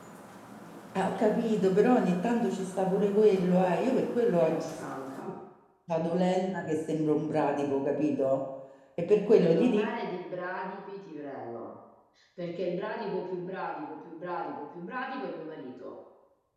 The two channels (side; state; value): both; identical; correlation 1.00